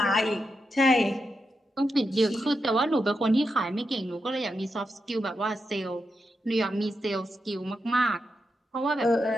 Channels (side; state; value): both; normal; correlation 0.86